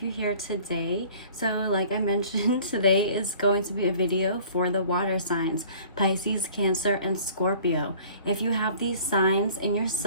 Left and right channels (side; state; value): both; inverted; correlation -0.49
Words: you here today. So like I mentioned, today is going to be a video for the water signs, Pisces, Cancer, and Scorpio. If you have these signs in your